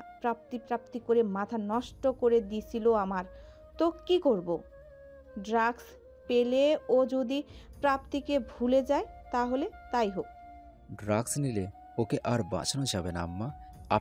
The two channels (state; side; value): identical; both; correlation 1.00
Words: প্রাপ্তি প্রাপ্তি করে মাথা নষ্ট করে দিছিল আমার, তো কি করব? ড্রাগস পেলে ও যদি প্রাপ্তিকে ভুলে যায় তাহলে তাই হোক। ড্রাগস নিলে ওকে আর বাঁচানো যাবে না আম্মা,